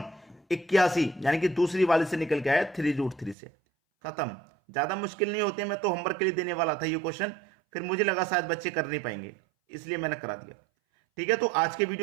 81, यानी कि दूसरी वाली से निकल के आया 3√3 से। खत्म, ज्यादा मुश्किल नहीं होते, मैं तो होमवर्क के लिए देने वाला था ये क्वेश्चन, फिर मुझे लगा शायद बच्चे कर नहीं पाएंगे, इसलिए मैंने करा दिया। ठीक है, तो आज के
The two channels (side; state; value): left; drops out; at 3.4 s